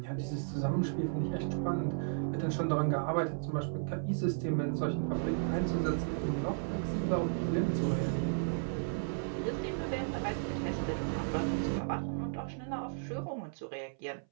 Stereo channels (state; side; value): silent; left; 55 dB below the other